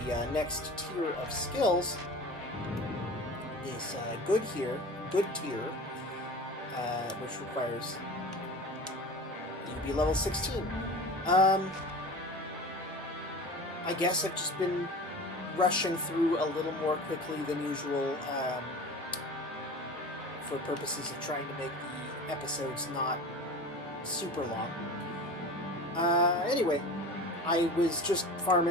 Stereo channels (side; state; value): both; normal; correlation 0.35